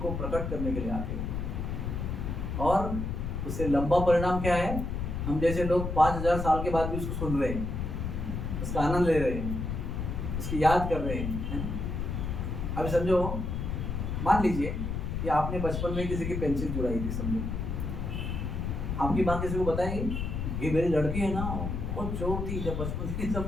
प्रकट करने के लिए आते हैं, और उससे लंबा परिणाम क्या है? हम जैसे लोग 5000 साल के बाद भी उसको सुन रहे हैं, उसका आनंद ले रहे हैं, उसकी याद कर रहे हैं। अभी समझो, मान लीजिए कि आपने बचपन में किसी की पेंसिल चुराई थी, समझो आपकी माँ किसी को बताएगी ये मेरी लड़की है ना, बहुत चोर थी जब बचपन में,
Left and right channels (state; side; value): noise; left; rumble, 3 dB below the sound